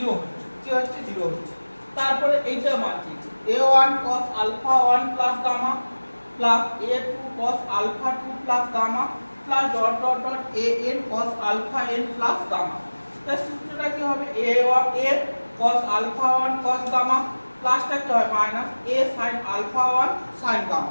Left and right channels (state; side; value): inverted; both; correlation -1.00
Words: হচ্ছে, কি হচ্ছে 0 হচ্ছে। তারপরে এইটার মান কি a1 cos alpha 1 plus gamma plus a2 cos alpha 2 plus gamma plus dot dot dot an cos alpha n plus gamma। তাহলে সূত্রটা কি হবে a cos alpha 1 cos gamma প্লাসটা কি হয় minus a sin alpha 1 sin